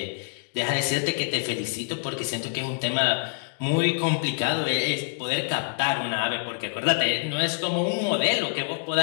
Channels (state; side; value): silent; right; digital silence